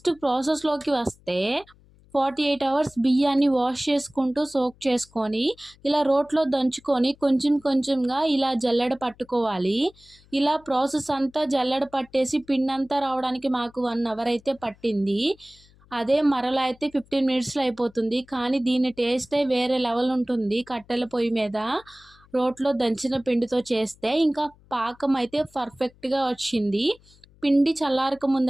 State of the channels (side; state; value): left; noise; hum, 28 dB below the sound